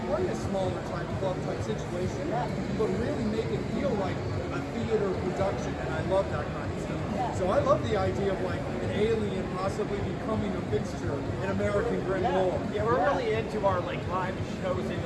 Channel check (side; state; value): both; identical; correlation 1.00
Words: play a smaller type club type situation, but really make it feel like a theater production, and I love that kind of stuff. So I love the idea of like an alien possibly becoming a fixture in American Grim Lore. Yeah, we're really into our like live shows in